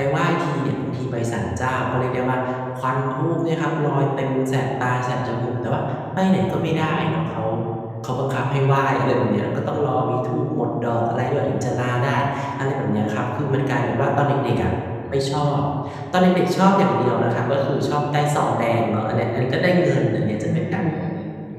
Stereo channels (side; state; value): both; identical; correlation 1.00